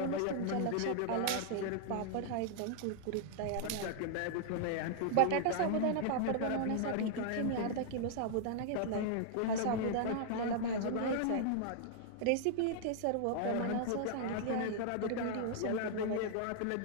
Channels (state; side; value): different; both; correlation -0.01